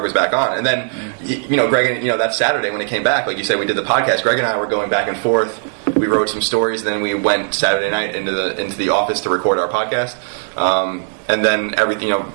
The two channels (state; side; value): silent; left; digital silence